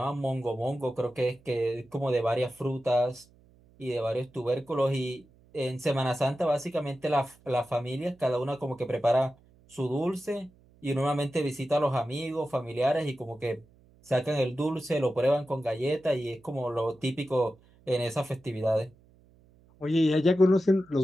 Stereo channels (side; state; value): right; noise; hum, 29 dB below the sound